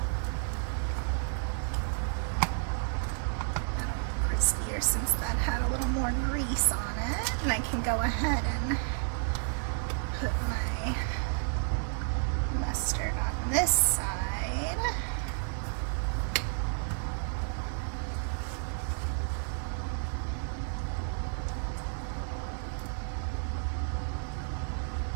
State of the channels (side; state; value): left; silent; 57 dB below the other